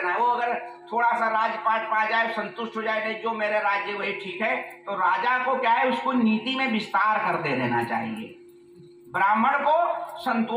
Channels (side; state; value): both; identical; correlation 1.00